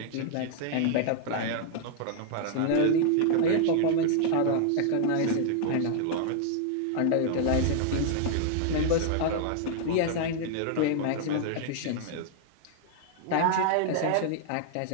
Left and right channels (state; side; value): different; both; correlation -0.01